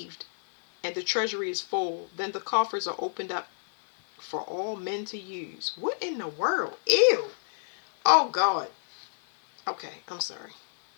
and the treasury is full, then the coffers are opened up for all men to use. What in the world? Ew. Oh God. Okay, I'm sorry.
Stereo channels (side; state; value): right; silent; digital silence